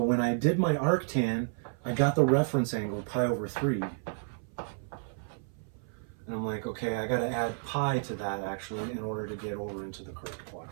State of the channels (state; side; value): silent; left; 57 dB below the other